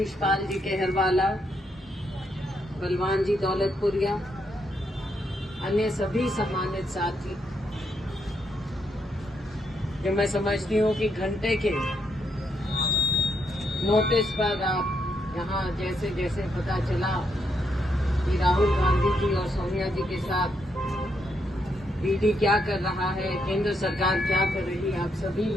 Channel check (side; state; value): both; normal; correlation 0.78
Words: जी केहरवाला, बलवान जी दौलतपुरिया, अन्य सभी सम्मानित साथी, जो मैं समझती हूँ कि घंटे के नोटिस पर आप यहाँ जैसे जैसे पता चला कि राहुल गांधी जी और सोनिया जी के साथ ईडी क्या कर रहा है, केंद्र सरकार क्या कर रही है, आप सभी